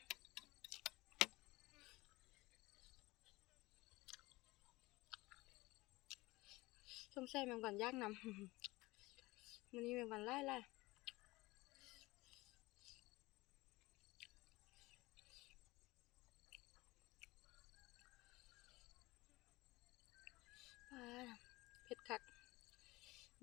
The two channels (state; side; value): quieter; right; 21.0 dB